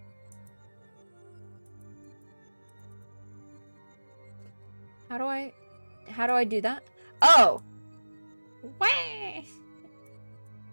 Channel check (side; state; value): both; inverted; correlation -1.00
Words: How do I do that? Oh! Way!